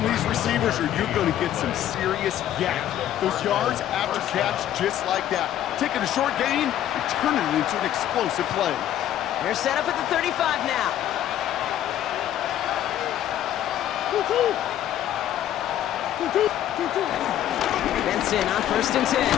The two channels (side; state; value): right; quieter; 11.7 dB